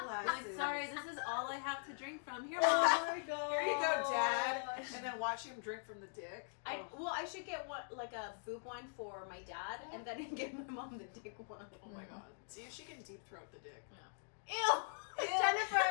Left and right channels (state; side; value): silent; right; digital silence